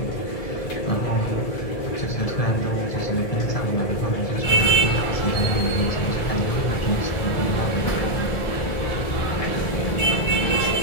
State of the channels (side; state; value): right; late; 1.4 ms